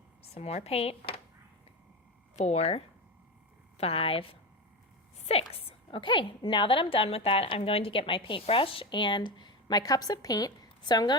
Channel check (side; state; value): both; normal; correlation 0.19